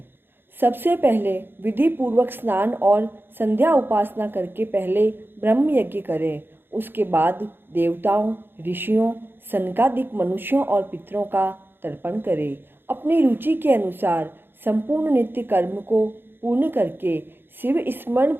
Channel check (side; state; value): left; late; 0.10 ms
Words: सबसे पहले विधि पूर्वक स्नान और संध्या उपासना करके पहले ब्रह्म यज्ञ करें। उसके बाद देवताओं, ऋषियों, सनकादिक मनुष्यों और पितरों का तर्पण करें। अपनी रुचि के अनुसार संपूर्ण नित्य कर्म को पूर्ण करके शिव स्मरण